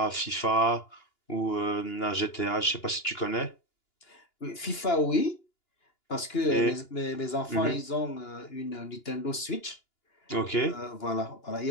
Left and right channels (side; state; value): right; late; 2.9 ms